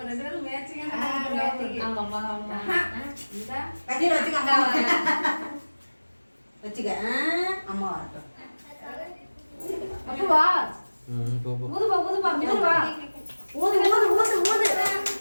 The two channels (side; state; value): both; inverted; correlation -1.00